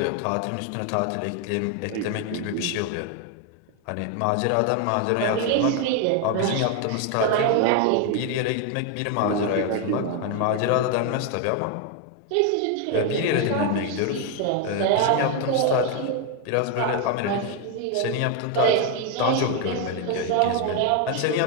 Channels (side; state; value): both; different; correlation 0.01